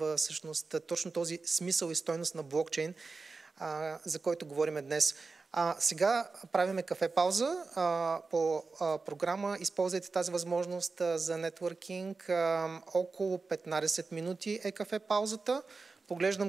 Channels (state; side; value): quieter; left; 4.1 dB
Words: всъщност точно този смисъл и стойност на блокчейн, за който говорим днес. Сега правиме кафе пауза по програма. Използвайте тази възможност за нетворкинг. Около 15 минути е кафе паузата.